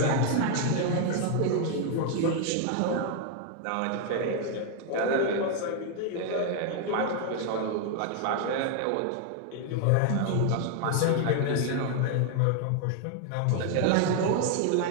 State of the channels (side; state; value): both; different; correlation 0.00